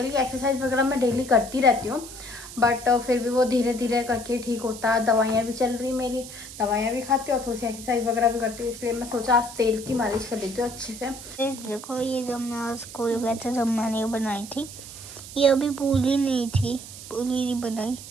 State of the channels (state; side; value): noise; right; hiss, 13 dB below the sound